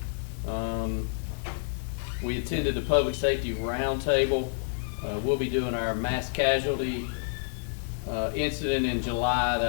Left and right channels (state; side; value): silent; right; digital silence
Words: We attended the Public Safety Roundtable. We'll be doing our mass casualty incident in July.